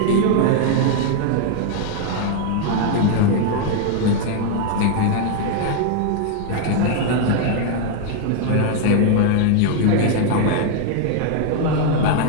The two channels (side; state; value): both; different; correlation 0.00